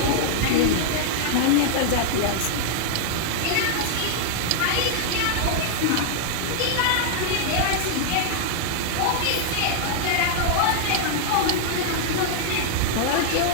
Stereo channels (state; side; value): different; both; correlation -0.01